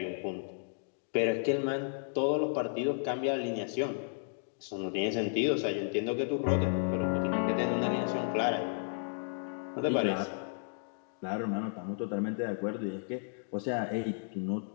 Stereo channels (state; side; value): silent; right; digital silence